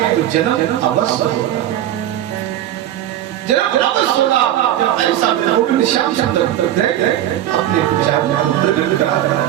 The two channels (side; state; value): left; quieter; 12.4 dB